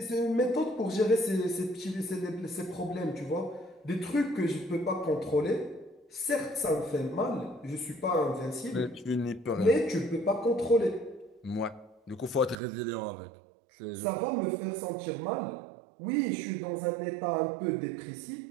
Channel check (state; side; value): drops out; left; at 12.6 s